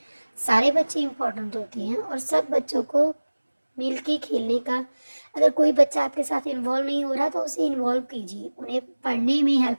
सारे बच्चे इम्पोर्टेंट होते हैं और सब बच्चों को मिल के खेलने का, अगर कोई बच्चा आपके साथ इन्वॉल्व नहीं हो रहा तो उसे इन्वॉल्व कीजिए, उन्हें पढ़ने में हेल्प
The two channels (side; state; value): both; inverted; correlation -1.00